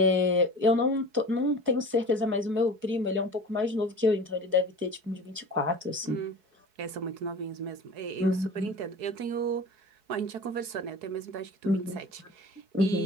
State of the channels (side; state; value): left; late; 4.7 ms